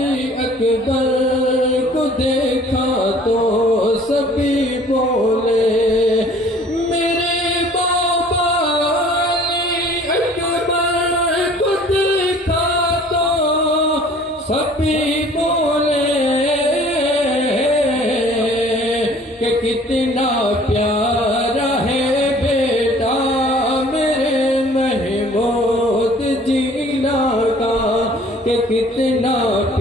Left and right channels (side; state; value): both; normal; correlation 0.52